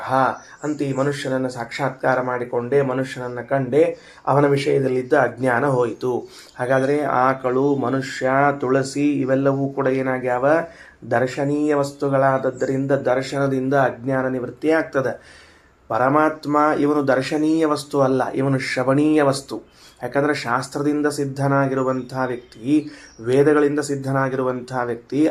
ಅಂತ ಈ ಮನುಷ್ಯನನ್ನು ಸಾಕ್ಷಾತ್ಕಾರ ಮಾಡಿಕೊಂಡೆ, ಮನುಷ್ಯನನ್ನು ಕಂಡೆ, ಅವನ ವಿಷಯದಲ್ಲಿದ್ದ ಅಜ್ಞಾನ ಹೋಯಿತು. ಹಾಗಾದರೆ ಆಕಳು, ಮನುಷ್ಯ, ತುಳಸಿ ಇವೆಲ್ಲವೂ ಕೂಡ ಏನಾಗ್ಯಾವ? ದರ್ಶನೀಯ ವಸ್ತುಗಳಾದದ್ದರಿಂದ ದರ್ಶನದಿಂದ ಅಜ್ಞಾನ ನಿವೃತ್ತಿ ಆಗ್ತದೆ. ಪರಮಾತ್ಮ ಇವನು ದರ್ಶನೀಯ ವಸ್ತು ಅಲ್ಲ, ಇವನು ಶ್ರವಣೀಯ ವಸ್ತು. ಯಾಕಂದರೆ ಶಾಸ್ತ್ರದಿಂದ ಸಿದ್ಧನಾಗಿರುವಂತಹ ವ್ಯಕ್ತಿ, ವೇದಗಳಿಂದ ಸಿದ್ಧನಾಗಿರುವಂತಹ ವ್ಯಕ್ತಿ,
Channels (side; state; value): both; identical; correlation 1.00